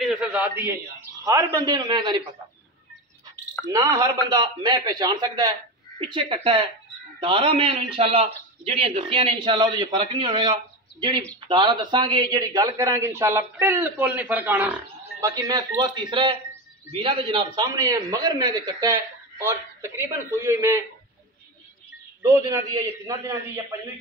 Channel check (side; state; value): both; normal; correlation 0.20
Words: नस्ल जात दी है। हर बंदे मैं नहीं पता ना, हर बंदा मैं पहचान सकता है। पिछे कट्टा है दारा मैं इंशाल्लाह जिहड़ियां दसियां ने इंशाल्लाह उहदे फर्क नहीं होगा। जिहड़ी दारा दसांगे, जिहड़ी गल करांगे इंशाल्लाह बिल्कुल नहीं फर्क आना। बाकी मैं सूआ तीसरा है, वीरा के जनाब सामने है, मगर मैं तो कट्टा है और तकरीबन सूई हुई मैं 2 दिनों की है या 3 दिनों की या 5वीं